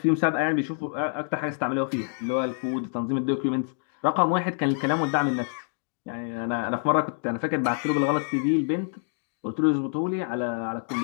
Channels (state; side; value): silent; right; 60 dB below the other